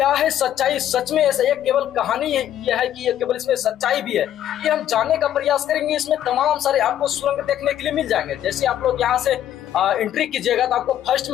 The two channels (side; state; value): right; quieter; 11.3 dB